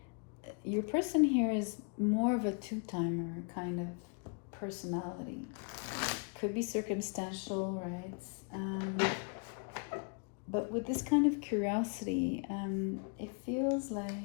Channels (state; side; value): quieter; right; 37.1 dB